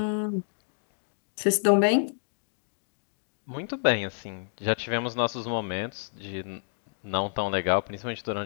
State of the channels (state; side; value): silent; right; digital silence